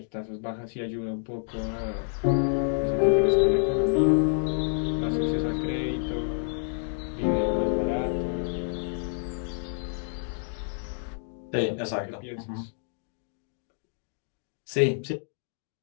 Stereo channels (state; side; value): silent; right; digital silence